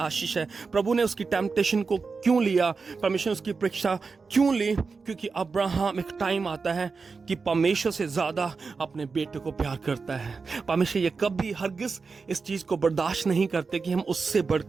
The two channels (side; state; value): left; quieter; 4.7 dB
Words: है। प्रभु ने उसकी टेम्पटेशन को क्यों लिया, परमेश्वर ने उसकी परीक्षा क्यों ली? क्योंकि अब्राहम, एक टाइम आता है कि परमेश्वर से ज्यादा अपने बेटे को प्यार करता है। परमेश्वर ये कभी हरगिज इस चीज को बर्दाश्त नहीं करते कि हम उससे